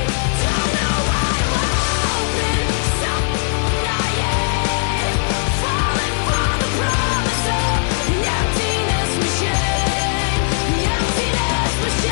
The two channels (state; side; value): silent; right; digital silence